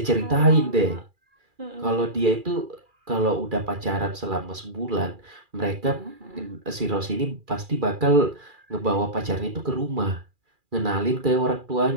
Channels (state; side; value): late; left; 2.4 ms